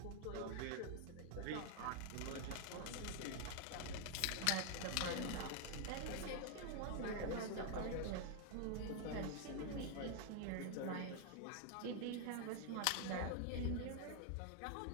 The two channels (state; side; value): different; both; correlation 0.00